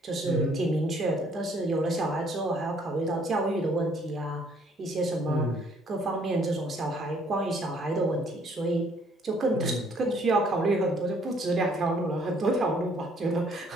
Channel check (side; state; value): both; normal; correlation 0.63